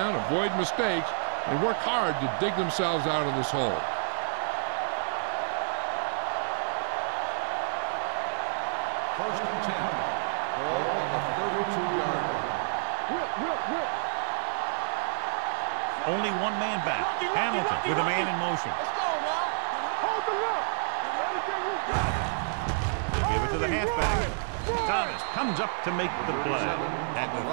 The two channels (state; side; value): silent; left; 59 dB below the other